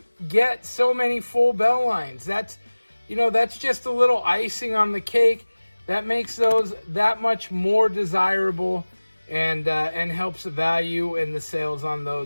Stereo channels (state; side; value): inverted; both; correlation -1.00